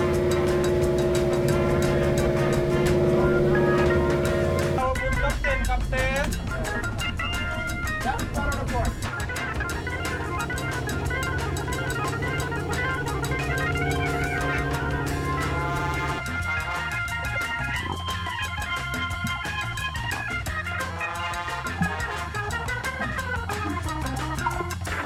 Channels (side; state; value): both; identical; correlation 1.00